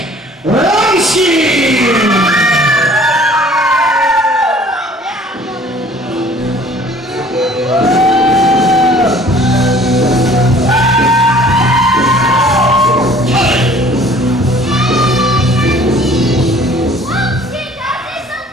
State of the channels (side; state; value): both; normal; correlation 0.53